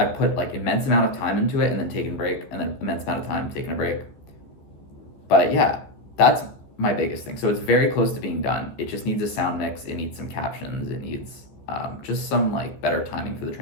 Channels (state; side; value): late; right; 14 ms